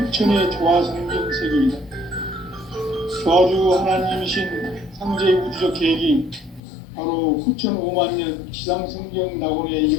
조화성경 세계이다. 조화주 하나님이신 상제의 우주적 계획이 바로 후천 5만 년 지상성경 낙원의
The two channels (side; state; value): right; drops out; at 6.6 s